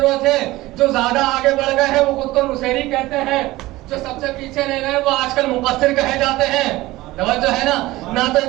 ہے. جو زیادہ آگے بڑھ گئے ہیں وہ خود کو نصیری کہتے ہیں, جو سب سے پیچھے رہ گئے وہ آج کل مقصر کہے جاتے ہیں. توجہ ہے نا, نہ تو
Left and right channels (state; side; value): quieter; left; 18.4 dB